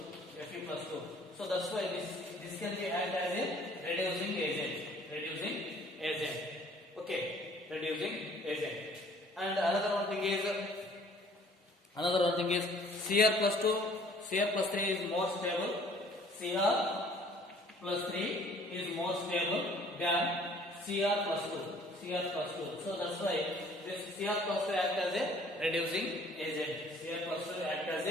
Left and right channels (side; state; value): both; normal; correlation 0.55